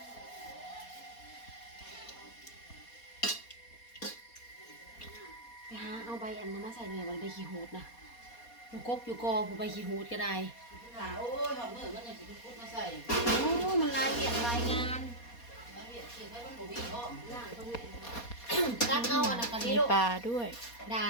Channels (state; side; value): late; right; 4.2 ms